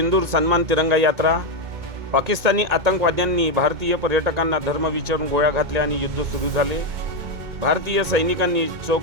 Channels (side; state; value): left; late; 2.1 ms